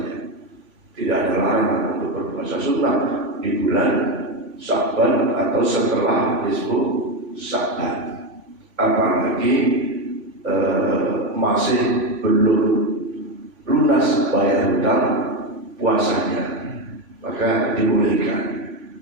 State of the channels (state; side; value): late; left; 3.5 ms